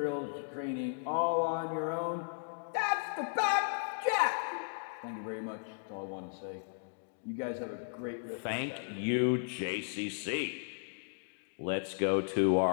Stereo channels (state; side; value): silent; right; digital silence